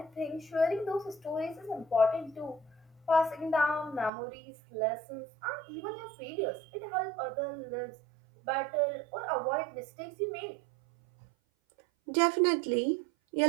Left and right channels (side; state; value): left; drops out; at 4.1 s